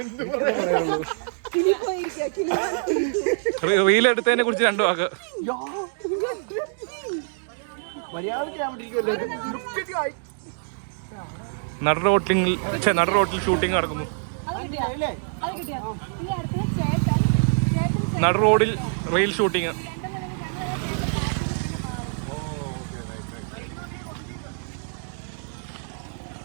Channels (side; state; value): left; silent; digital silence